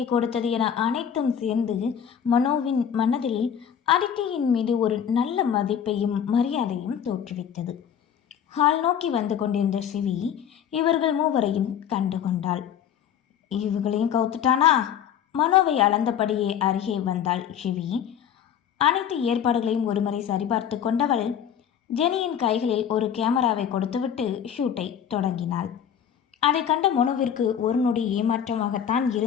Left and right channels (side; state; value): right; quieter; 8.8 dB